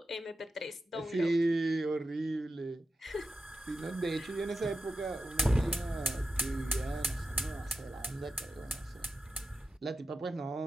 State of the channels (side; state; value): both; normal; correlation 0.91